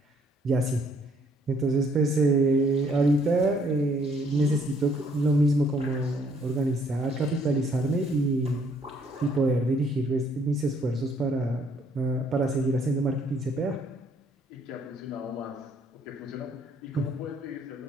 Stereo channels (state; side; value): normal; both; correlation 0.65